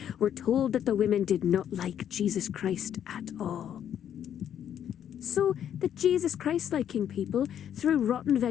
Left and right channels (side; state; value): right; quieter; 9.7 dB